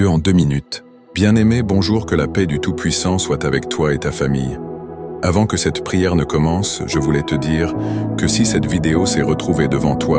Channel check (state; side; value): identical; both; correlation 1.00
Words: en 2 minutes. Bien-aimé, bonjour, que la paix du Tout-Puissant soit avec toi et ta famille. Avant que cette prière ne commence, je voulais te dire que si cette vidéo s'est retrouvée devant